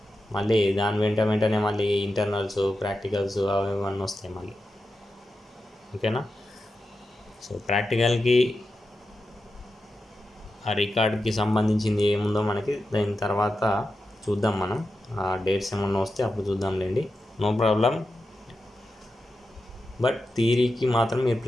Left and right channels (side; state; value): both; normal; correlation 0.90